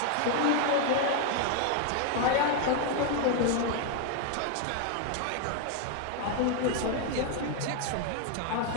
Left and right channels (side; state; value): both; different; correlation 0.01